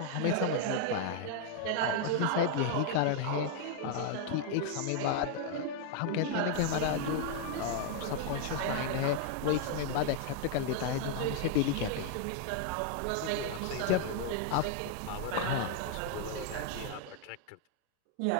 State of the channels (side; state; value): both; different; correlation 0.00